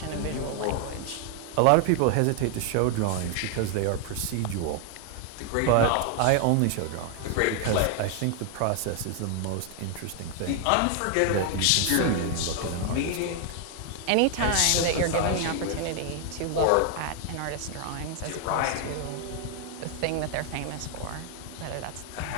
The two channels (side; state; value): both; different; correlation 0.00